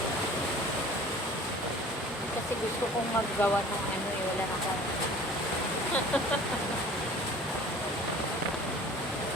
Kasi gusto kong maggawa ng ano eh, wala na akong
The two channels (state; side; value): normal; both; correlation 0.45